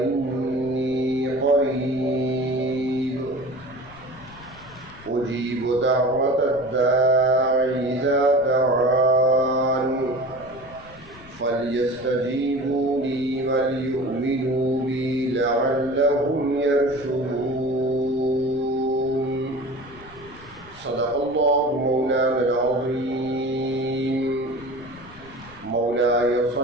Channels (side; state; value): left; noise; rumble, 21 dB below the sound